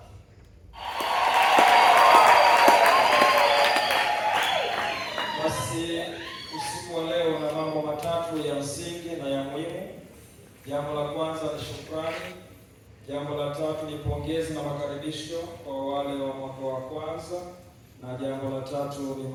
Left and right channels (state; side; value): identical; both; correlation 1.00